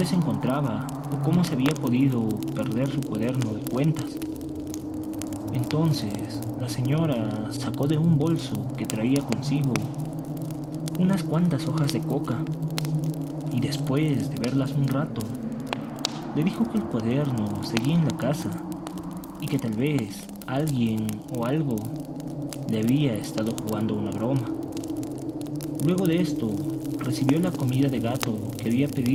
se encontraba o cómo se había podido perder su cuaderno de cuentas. Entonces, la señora sacó de un bolso que traía consigo unas cuantas hojas de coca, y después de verlas un rato, le dijo que el cuaderno seguía en la casa y que tal vez alguien o algo le había estado jugando una broma. Luego de esto, recibió la comida de gato que había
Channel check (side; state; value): both; identical; correlation 1.00